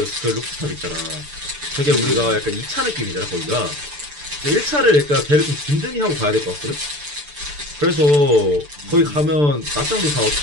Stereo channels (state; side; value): late; left; 6.8 ms